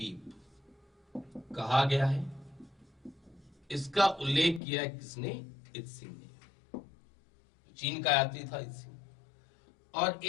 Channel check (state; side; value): drops out; right; at 4.6 s